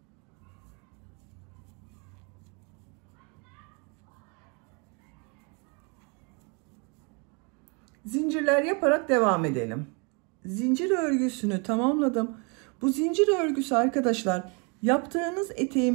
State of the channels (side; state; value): left; quieter; 33.6 dB